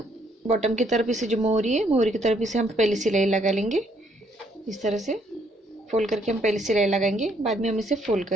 बॉटम की तरफ इसे जो मोहरी है, मोहरी की तरफ इसे हम पहले सिलाई लगा लेंगे। इस तरह से फोल्ड करके हम पहले सिलाई लगाएंगे, बाद में हम इसे फोल्ड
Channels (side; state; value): both; normal; correlation 0.68